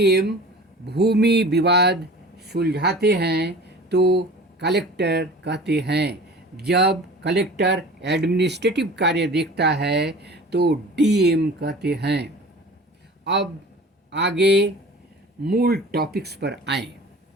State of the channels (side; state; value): both; normal; correlation 0.41